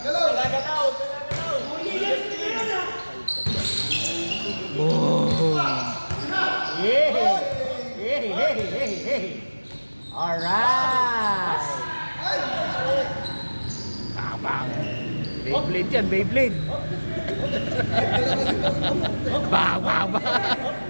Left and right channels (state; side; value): inverted; both; correlation -1.00